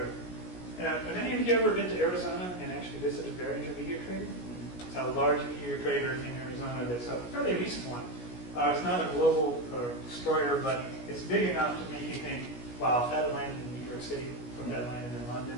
Have any of you ever been to Arizona and actually visited Behringer Meteor Crater? It's a large meteor crater in Arizona that's a fairly recent one. It's not a global destroyer, but it's big enough to make you think, wow, if that had landed in New York City, or if that landed in London,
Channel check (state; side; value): late; right; 17 ms